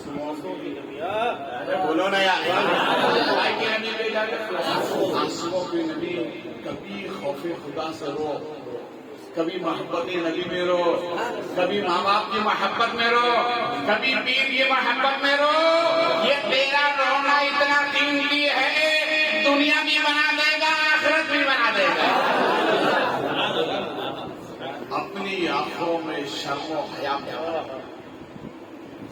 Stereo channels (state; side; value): identical; both; correlation 1.00